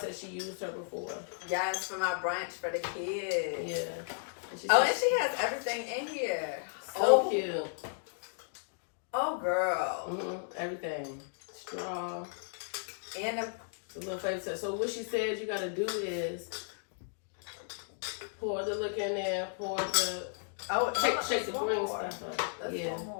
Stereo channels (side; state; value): right; silent; digital silence